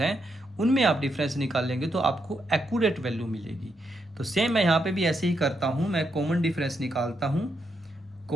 उनमें आप डिफरेंस निकाल लेंगे तो आपको एक्यूरेट वैल्यू मिलेगी। तो सेम मैं यहाँ पे भी ऐसे ही करता हूँ, मैं कॉमन डिफरेंस निकालता हूँ।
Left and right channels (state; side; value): normal; both; correlation 0.81